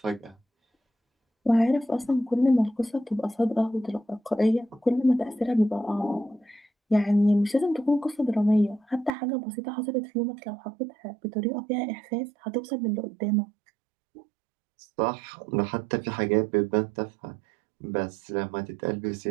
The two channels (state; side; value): drops out; left; at 9.1 s